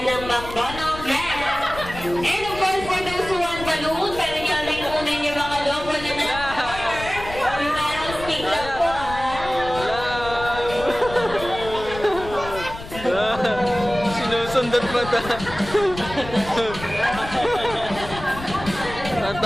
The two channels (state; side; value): noise; left; rumble, 12 dB below the sound